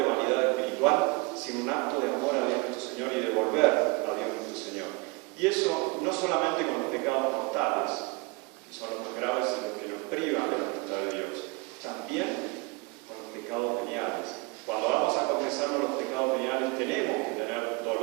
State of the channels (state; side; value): quieter; left; 26.5 dB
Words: vanidad espiritual, sino un acto de amor a Dios nuestro Señor y de volver a Dios nuestro Señor. Y eso no solamente con los pecados mortales, que son los más graves y los que nos privan de la voluntad de Dios, también con los pecados veniales. Cuando vamos a confesarnos los pecados veniales tenemos que tener